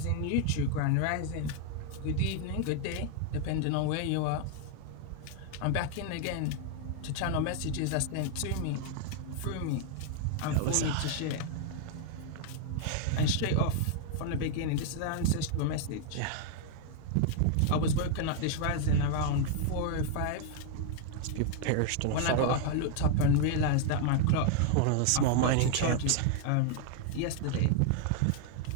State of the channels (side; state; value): both; different; correlation 0.00